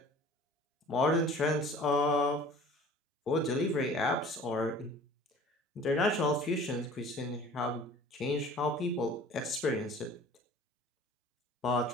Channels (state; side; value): normal; both; correlation 0.46